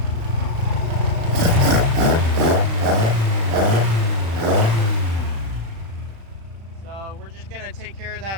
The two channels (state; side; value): late; left; 35 ms